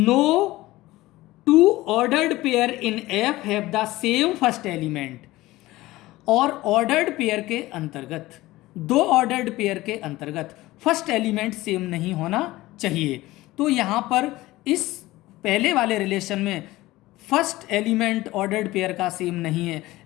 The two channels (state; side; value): quieter; right; 18.2 dB